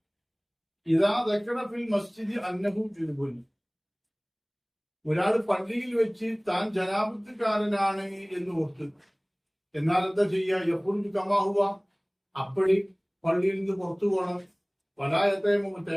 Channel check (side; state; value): both; identical; correlation 1.00